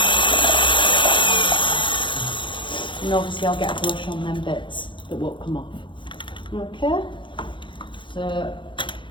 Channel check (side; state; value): right; late; 0.23 ms